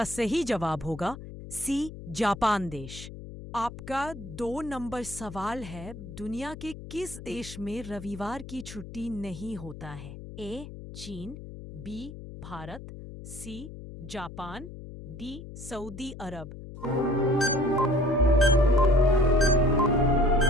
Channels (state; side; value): noise; left; hum, 13 dB below the sound